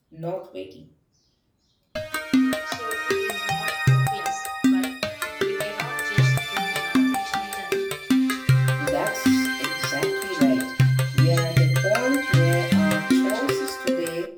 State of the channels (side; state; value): both; identical; correlation 1.00